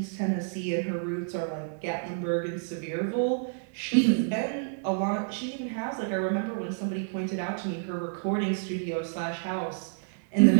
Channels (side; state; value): left; silent; 55 dB below the other